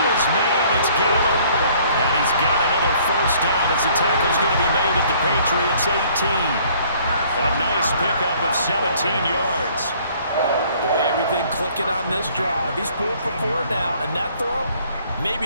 his man. It's Gallup. And he's got another first down as the tackle's going to be made at the Patriots 18. A nice pickup of 17 yards. Boy, everything clicking on this drive. He's 4 for 4 now, and that throw,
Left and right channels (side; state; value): both; inverted; correlation -0.59